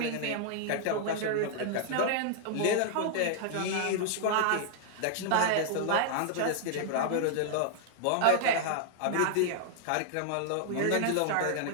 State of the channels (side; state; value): both; different; correlation 0.00